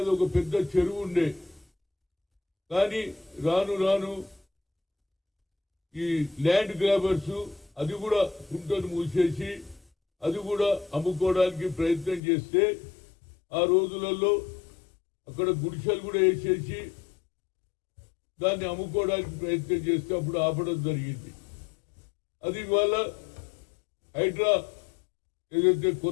అది ఒక పెద్ద చెరువు ఉండే. కానీ రాను రాను ఈ ల్యాండ్ గ్రాబర్స్ అది కూడా గుంటను మూసేసి అది కూడా అమ్ముకోవడానికి ప్రయత్నం చేస్తే ఆ రోజులలో అక్కడ గుడిసెలు కూడా వేసేసి దాన్ని అమ్ముకోవడానికి ప్రయత్నం చేస్తే అప్పుడు ఆపడం జరిగింది. అది ఇవాళ హైడ్రా ఏదైతే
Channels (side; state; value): right; drops out; at 12.2 s